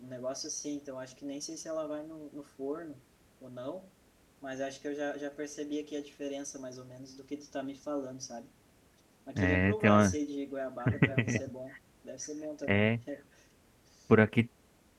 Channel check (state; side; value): identical; both; correlation 1.00